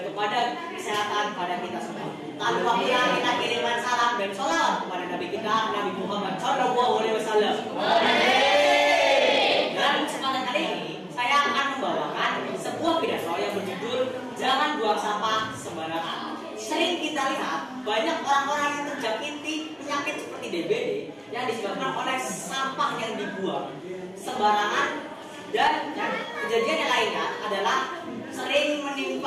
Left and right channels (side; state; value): both; identical; correlation 1.00